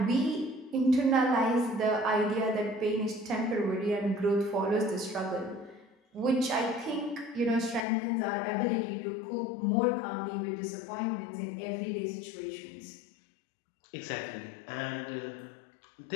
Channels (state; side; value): drops out; right; at 7.8 s